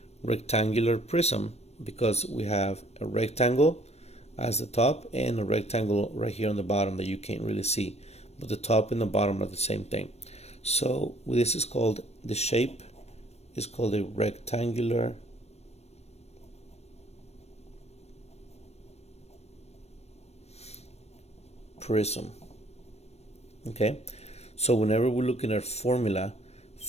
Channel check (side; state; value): right; late; 0.31 ms